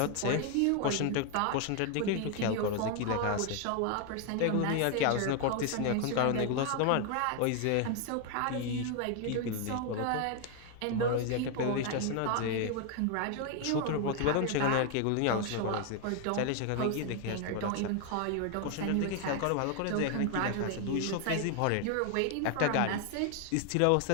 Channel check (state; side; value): different; both; correlation 0.01